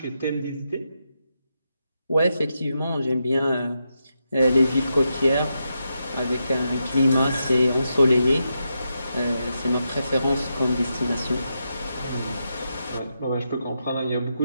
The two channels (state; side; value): inverted; both; correlation -0.85